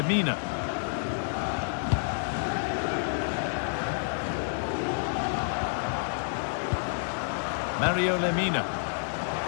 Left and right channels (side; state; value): right; silent; 59 dB below the other